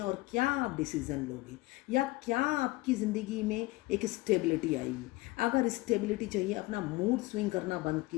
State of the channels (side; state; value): right; quieter; 20.8 dB